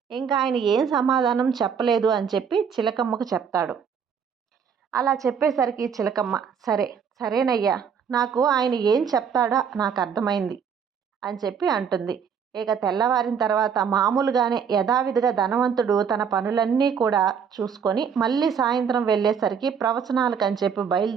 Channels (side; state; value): left; quieter; 7.0 dB